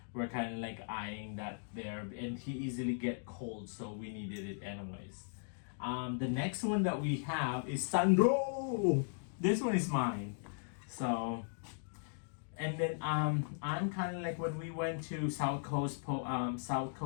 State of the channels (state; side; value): silent; right; digital silence